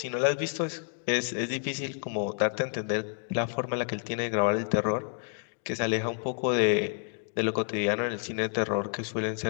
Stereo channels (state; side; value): silent; right; 58 dB below the other